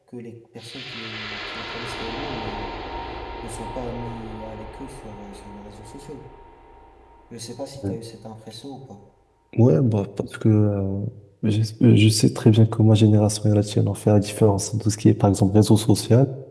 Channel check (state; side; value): identical; both; correlation 1.00